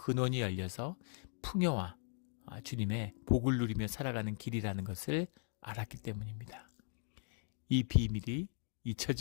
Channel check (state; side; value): silent; right; 52 dB below the other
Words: 열려서 풍요와 주님의 복을 누리며 살아가는 길이라는 것을 알았기 때문입니다. 이 비밀이